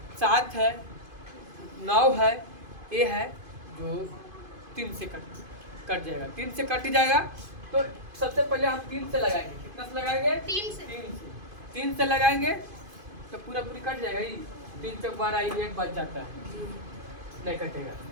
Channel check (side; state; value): left; late; 2.5 ms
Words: 7 है 9 है ये है जो 3 से कट जाएगा। 3 से कट जाएगा तो सबसे पहले हम 3 से लगाएंगे। कितना से लगाएंगे, 3 से लगाएंगे तो पूरा पूरी कट जाएगा ही। 3 चौक 12 1 बच जाता है, नहीं कटेगा।